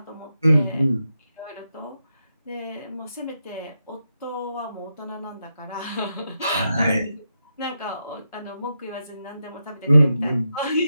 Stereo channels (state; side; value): inverted; both; correlation -0.85